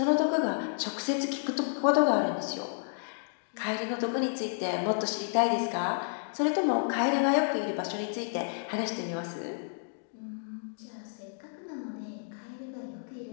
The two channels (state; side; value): silent; right; digital silence